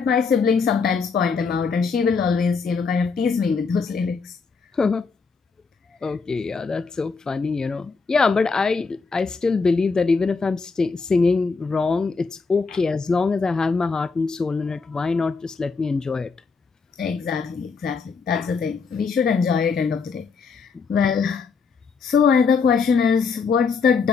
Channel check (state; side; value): quieter; right; 4.9 dB